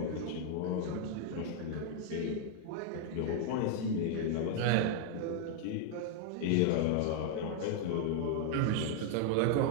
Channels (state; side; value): different; both; correlation 0.00